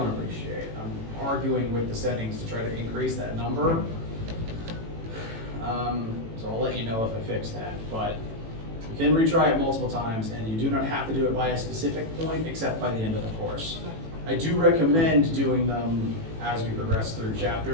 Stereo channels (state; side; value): late; left; 18 ms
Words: appreciate. I'm arguing with the settings to try to increase that number. So I'll let you know if I fix that. But you can retry it multiple times, and you do not have to do it by a specific point except by the end of the course. I do recommend doing them as we progress through